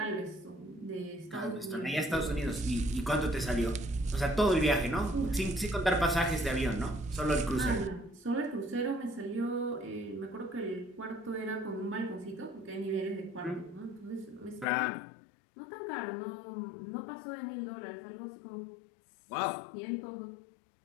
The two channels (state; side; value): drops out; right; at 14.7 s